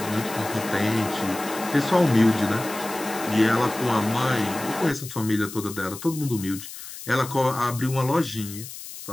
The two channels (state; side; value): noise; left; hiss, 12 dB below the sound